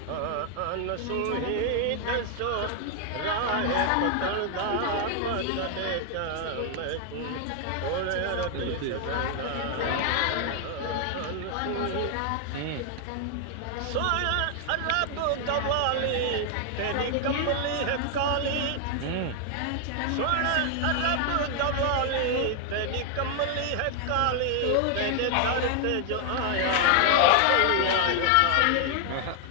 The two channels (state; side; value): different; both; correlation 0.00